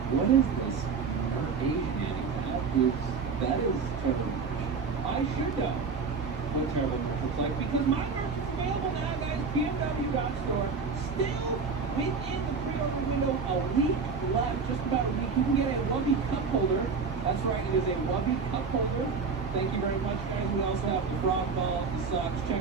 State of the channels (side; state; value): left; quieter; 5.1 dB